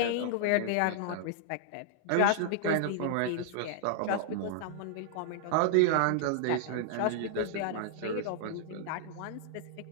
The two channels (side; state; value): both; different; correlation -0.01